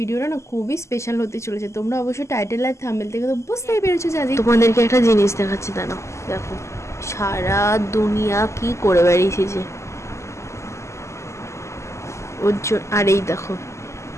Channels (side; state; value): right; late; 0.13 ms